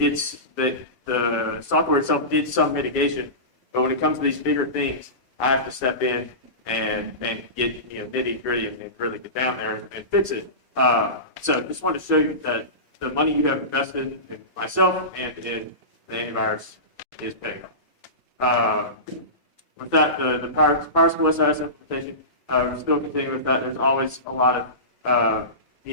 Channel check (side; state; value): left; late; 1.0 ms